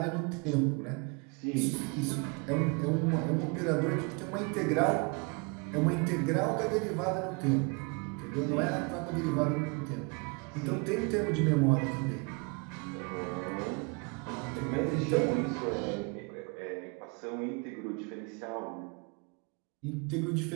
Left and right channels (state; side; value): quieter; left; 31.8 dB